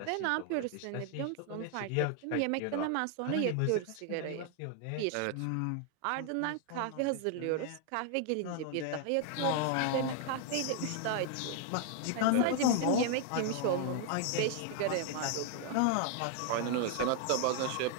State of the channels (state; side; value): different; both; correlation 0.00